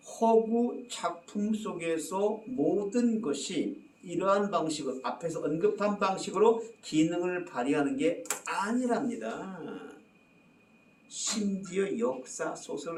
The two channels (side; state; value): both; identical; correlation 1.00